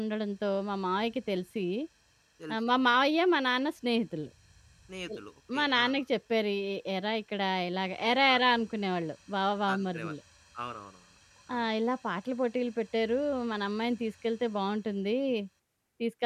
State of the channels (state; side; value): identical; both; correlation 1.00